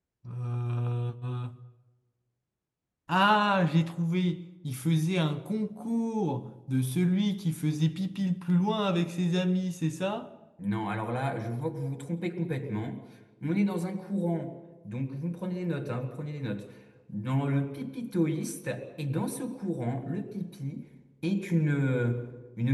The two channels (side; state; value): both; identical; correlation 1.00